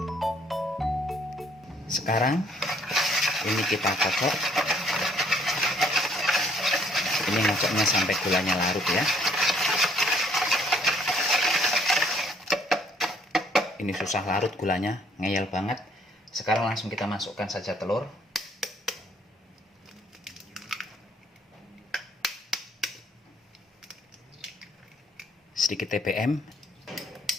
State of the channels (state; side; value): normal; both; correlation 0.64